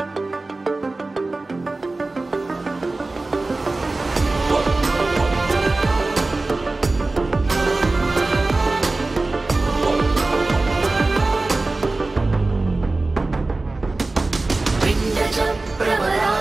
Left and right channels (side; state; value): left; quieter; 3.2 dB